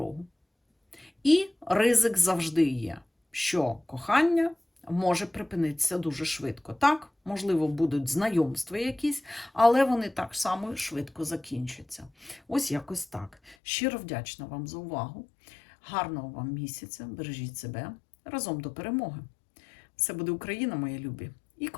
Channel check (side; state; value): right; drops out; at 13.6 s